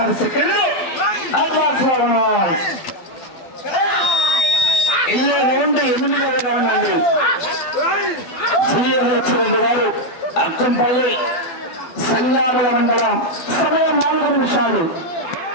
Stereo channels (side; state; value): right; late; 12 ms